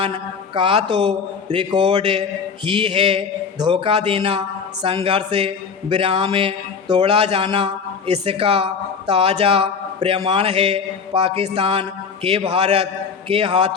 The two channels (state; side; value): quieter; right; 5.9 dB